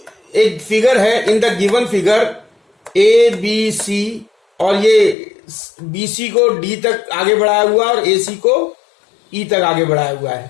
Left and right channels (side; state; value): right; drops out; at 5.2 s